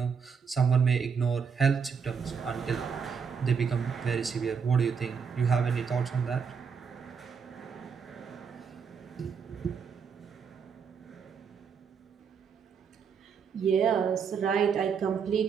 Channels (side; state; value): left; quieter; 6.3 dB